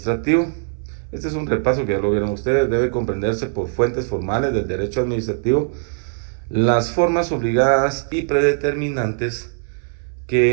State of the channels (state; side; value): silent; left; 64 dB below the other